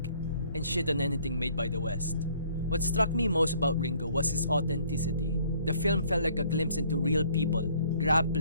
and shit on anything made by the West. What struck me most about Ringo was his authenticity. The film felt like a glimpse into real people,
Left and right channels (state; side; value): inverted; both; correlation -0.61